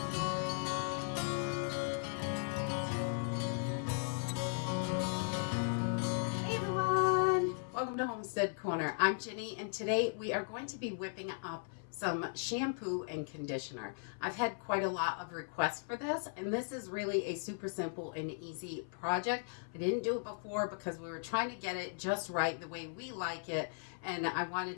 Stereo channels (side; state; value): right; silent; 53 dB below the other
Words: Hey everyone! Welcome to Homestead Corner. I'm Ginny, and today we are going to be whipping up some shampoo and conditioner. I've had quite a lot of requests for this, and this is really a super simple and easy project. I didn't do it before because we were trying to get it just right the way we like it, and I